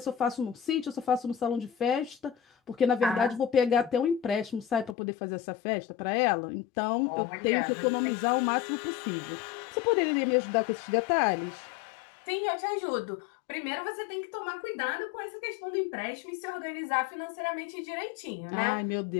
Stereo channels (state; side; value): drops out; right; at 5.0 s